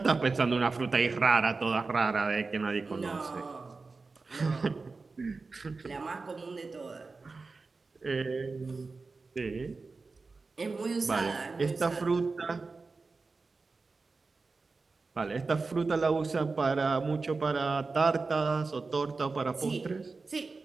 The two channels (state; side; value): quieter; left; 4.0 dB